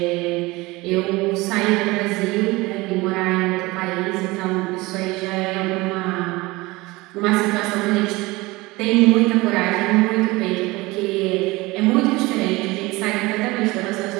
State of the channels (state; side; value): quieter; left; 21.8 dB